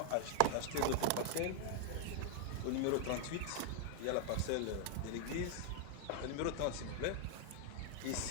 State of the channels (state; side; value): different; both; correlation 0.00